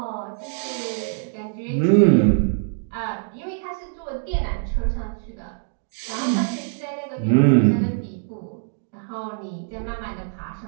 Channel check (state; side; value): silent; left; 63 dB below the other